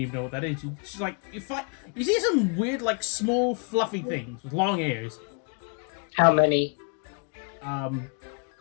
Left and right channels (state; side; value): quieter; right; 37.8 dB